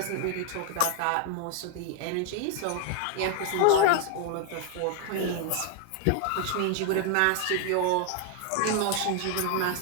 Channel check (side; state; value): both; different; correlation 0.00